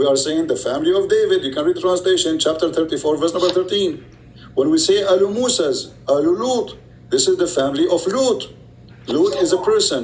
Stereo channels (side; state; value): both; identical; correlation 1.00